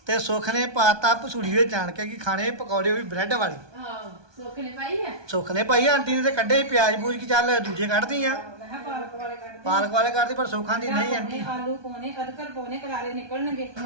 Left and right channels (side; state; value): left; late; 1.2 ms